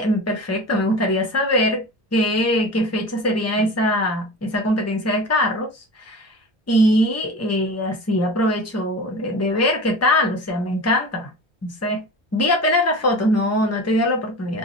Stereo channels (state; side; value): normal; both; correlation 0.33